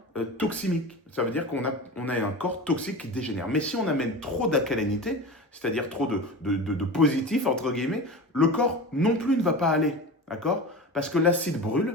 toximique. Ça veut dire qu'on a un corps toxique qui dégénère. Mais si on amène trop d'alcalinité, c'est-à-dire trop de positif, entre guillemets, le corps non plus ne va pas aller. D'accord? Parce que l'acide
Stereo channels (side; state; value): both; normal; correlation 0.30